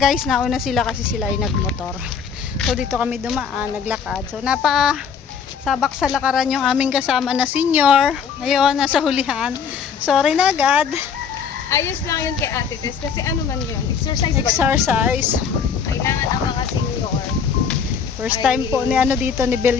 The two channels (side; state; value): right; quieter; 6.7 dB